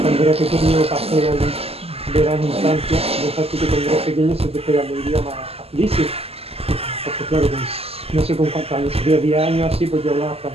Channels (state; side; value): late; left; 0.29 ms